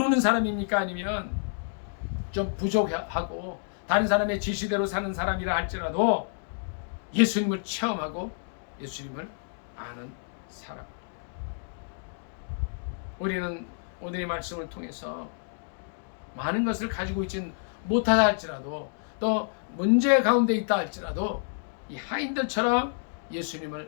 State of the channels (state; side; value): silent; right; digital silence